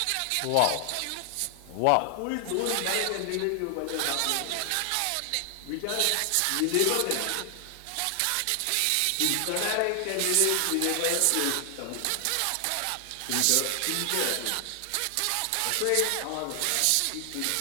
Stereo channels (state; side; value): different; both; correlation 0.00